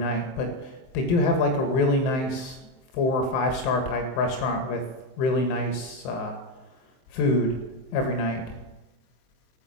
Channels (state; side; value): late; right; 23 ms